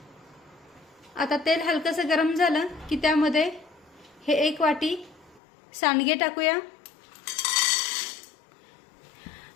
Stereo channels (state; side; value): drops out; right; at 5.4 s